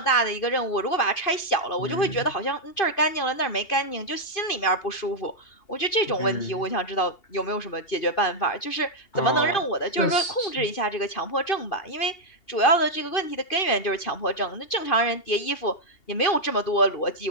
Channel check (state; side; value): late; right; 2.8 ms